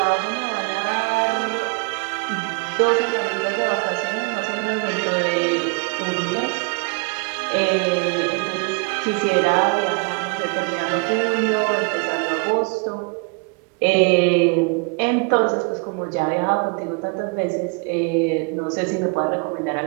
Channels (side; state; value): left; quieter; 33.4 dB